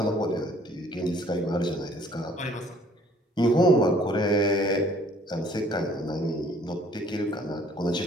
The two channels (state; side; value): normal; both; correlation 0.58